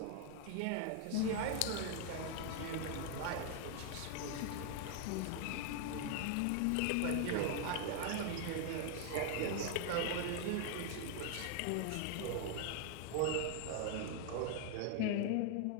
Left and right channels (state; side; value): different; both; correlation 0.00